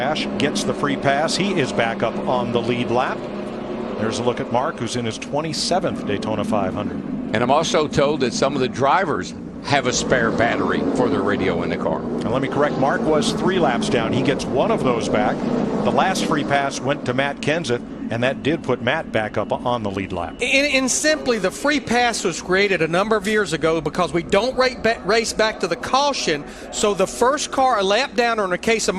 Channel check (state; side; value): identical; both; correlation 1.00